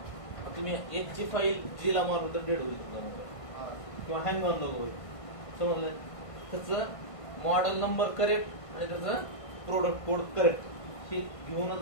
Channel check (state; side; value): late; right; 1.5 ms